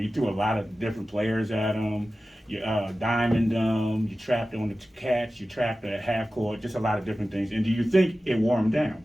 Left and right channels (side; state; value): both; normal; correlation 0.95